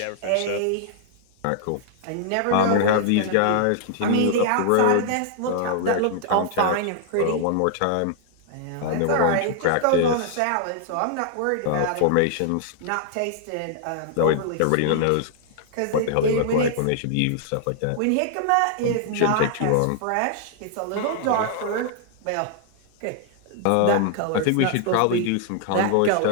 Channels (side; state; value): both; different; correlation 0.00